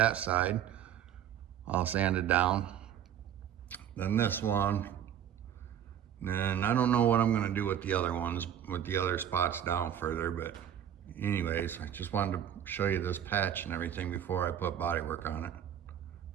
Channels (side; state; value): left; quieter; 9.8 dB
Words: side. I'll sand it down. Then this one. And I don't know what I'm gonna do with the other ones, with the other spots down further, but anyways, I just wanted to show you this patch and everything before I put body work on it,